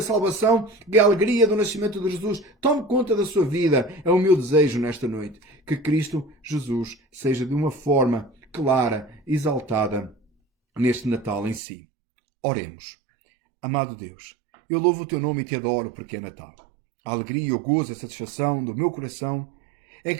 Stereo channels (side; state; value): left; drops out; at 11.6 s